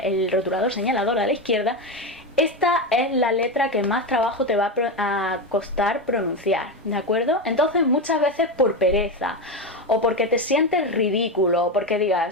el rotulador señalador a la izquierda. Esta es la letra que más trabajo te va a costar pronunciar, ¿de acuerdo? Entonces muchas veces por pereza, o porque te sientes ridículo, o porque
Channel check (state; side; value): normal; both; correlation 0.15